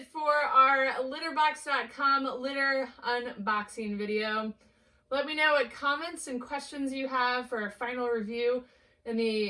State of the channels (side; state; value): both; identical; correlation 1.00